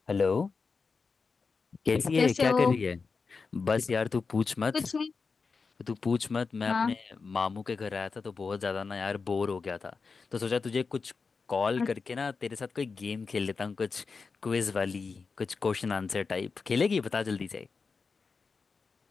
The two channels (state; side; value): quieter; right; 4.8 dB